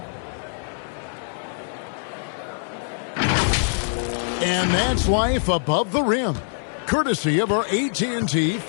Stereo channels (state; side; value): silent; right; digital silence